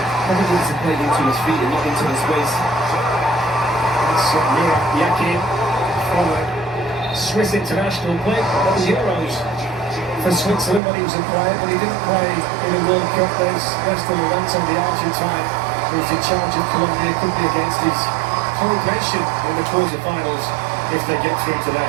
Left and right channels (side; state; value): left; drops out; at 10.8 s